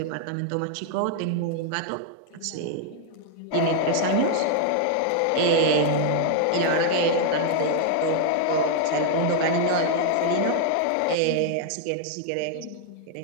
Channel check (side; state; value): both; different; correlation 0.00